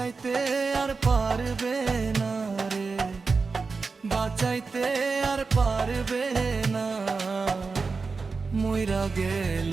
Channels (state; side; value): quieter; left; 4.5 dB